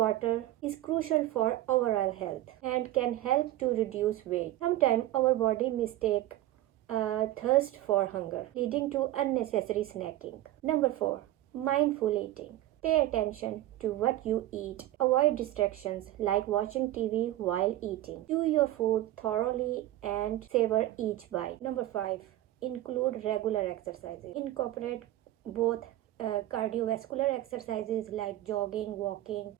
is crucial for overall health and can help to reduce weight. Sometimes our body mistake thirst for hunger, leading to unnecessary snacking. Number 4, mindful eating. Pay attention to what you eat. Avoid distractions like watching TV while eating. Chew your food thoroughly and savor each bite. Number 5, include regular exercises. Incorporate both cardiovascular exercises like jogging, walking,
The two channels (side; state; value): left; quieter; 14.7 dB